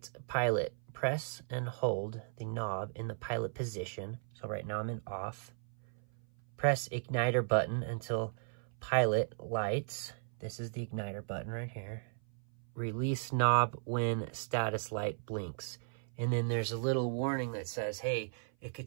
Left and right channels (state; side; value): silent; left; 53 dB below the other